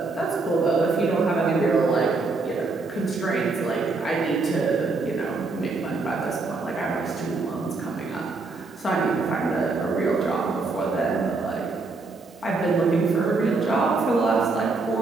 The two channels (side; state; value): left; quieter; 3.8 dB